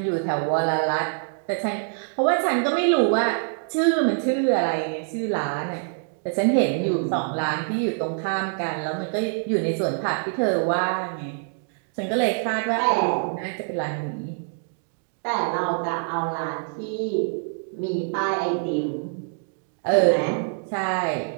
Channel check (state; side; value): silent; left; 62 dB below the other